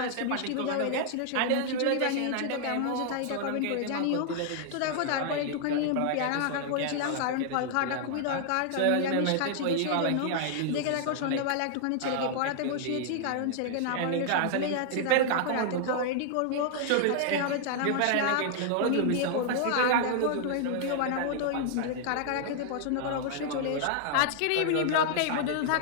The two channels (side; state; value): both; different; correlation -0.01